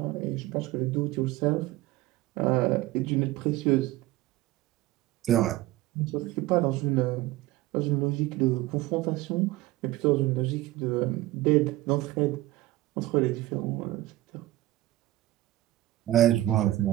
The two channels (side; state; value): left; quieter; 16.8 dB